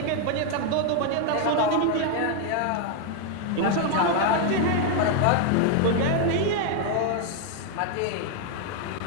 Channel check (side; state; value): both; different; correlation 0.00